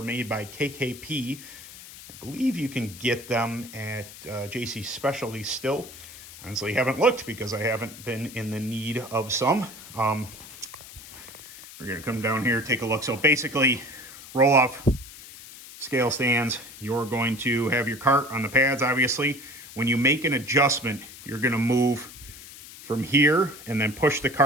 made by KKP. I believe you can get them at JC Specialty still. Honestly, haven't looked because I haven't been in the need of some. We're going to come down here, take a look. So basically, roll-off scale stands. You're going to have your kart on the pads, obviously. When you make an adjustment, you're going to move from here and then push the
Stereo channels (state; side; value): noise; left; hiss, 16 dB below the sound